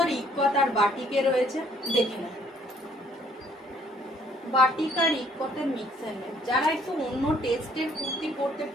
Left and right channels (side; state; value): both; normal; correlation 0.63